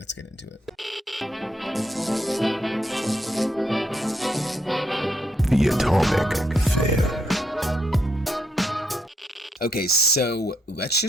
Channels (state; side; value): normal; both; correlation 0.77